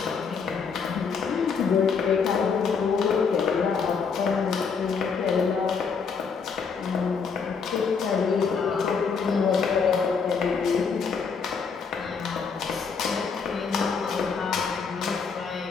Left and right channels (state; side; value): quieter; right; 5.6 dB